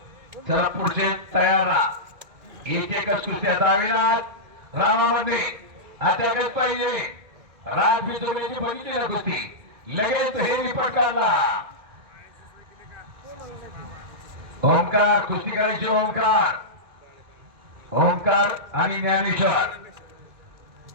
चला पुढचे तयार राहा. एक एकच कुस्त्या दावेनाथ रामामध्ये अटकत पाहिजे. राज बिचोल्याची बघितली ना कुस्ती, लगेच हे रिपोर्ट काढला. ओंकार कुस्ती करायची. ओंकार ओंकार आणि ज्ञानेश्वर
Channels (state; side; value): late; left; 1.9 ms